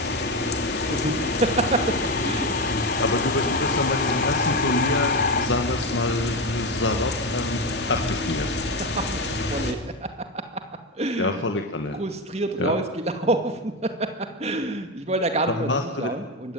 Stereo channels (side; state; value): both; normal; correlation 0.15